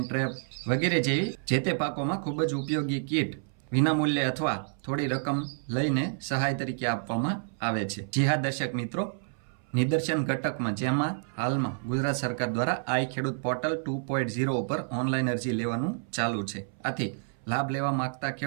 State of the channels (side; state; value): left; silent; 58 dB below the other